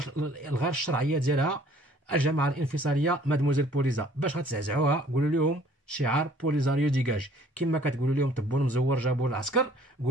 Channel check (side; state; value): both; normal; correlation 0.56